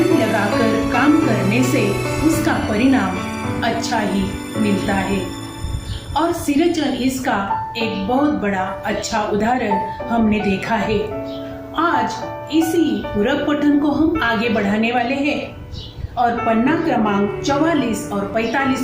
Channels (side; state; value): both; identical; correlation 1.00